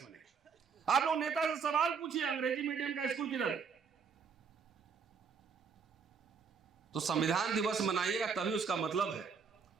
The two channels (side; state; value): left; quieter; 5.9 dB